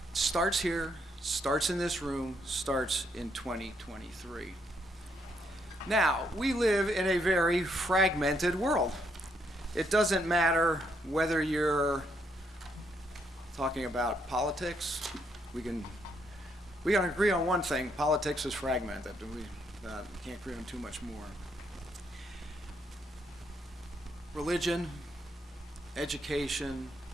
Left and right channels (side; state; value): both; normal; correlation 0.74